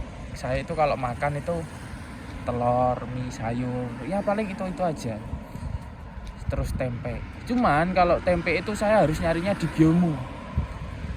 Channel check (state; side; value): identical; both; correlation 1.00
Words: saya itu kalau makan itu telur, mie, sayur, ya paling itu aja. Terus tempe. Cuman kalau tempe itu saya harus nyarinya di Gyomu.